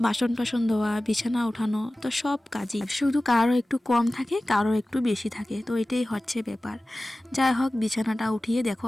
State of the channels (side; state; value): both; normal; correlation 0.97